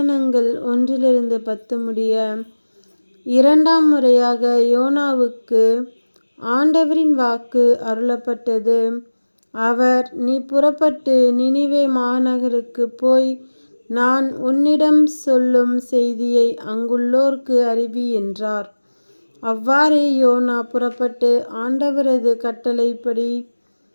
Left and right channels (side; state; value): both; inverted; correlation -1.00